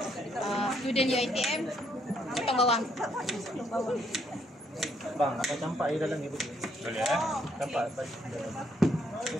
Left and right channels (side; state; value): both; normal; correlation 0.71